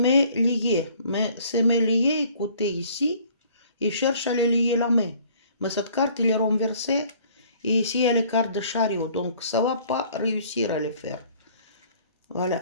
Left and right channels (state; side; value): inverted; both; correlation -0.56